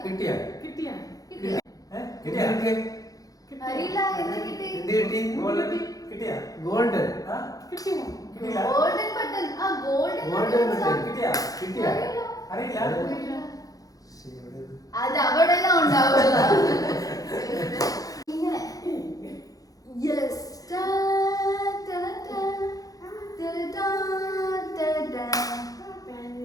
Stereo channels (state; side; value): late; right; 0.17 ms